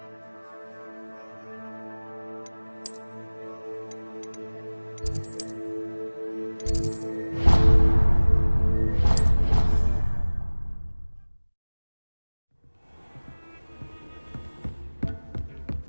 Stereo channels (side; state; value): both; inverted; correlation -1.00